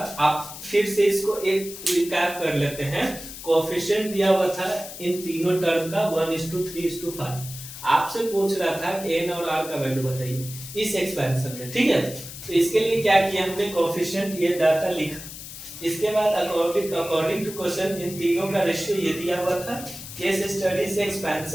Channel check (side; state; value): left; noise; hiss, 12 dB below the sound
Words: आप फिर से इसको एक रिकैप कर लेते हैं। कोएफिशिएंट दिया हुआ था इन तीनों टर्म का 1:3:5। आपसे पूछ रहा था कि n और r का वैल्यू बताइए इस एक्सपेंशन में। ठीक है, तो इसके लिए क्या किया हमने, कोएफिशिएंट ये डाटा लिखा, इसके बाद अकॉर्डिंग टू क्वेश्चन इन तीनों का रेशियो ये दिया हुआ था। केस स्टडी से